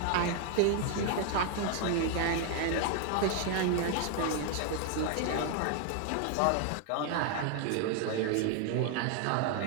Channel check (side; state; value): both; different; correlation 0.00